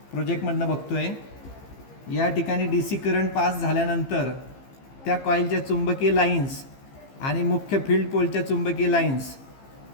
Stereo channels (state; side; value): late; right; 15 ms